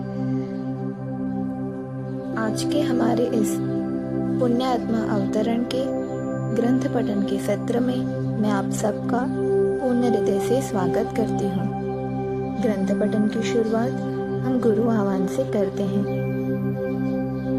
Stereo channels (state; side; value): identical; both; correlation 1.00